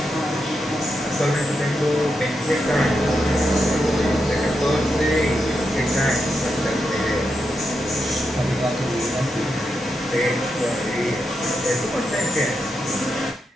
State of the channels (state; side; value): normal; both; correlation 0.85